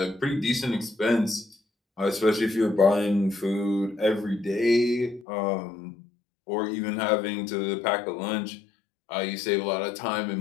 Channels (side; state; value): right; drops out; at 5.2 s